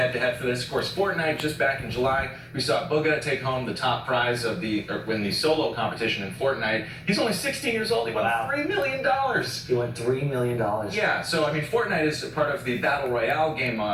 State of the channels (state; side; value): identical; both; correlation 1.00